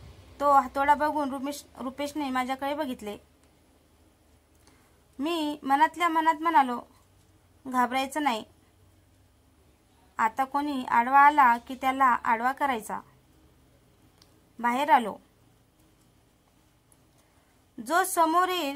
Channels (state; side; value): identical; both; correlation 1.00